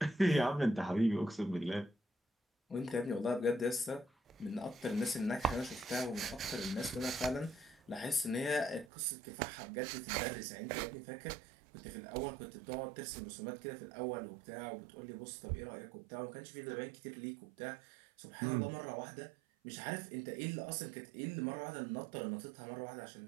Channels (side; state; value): left; drops out; at 8.9 s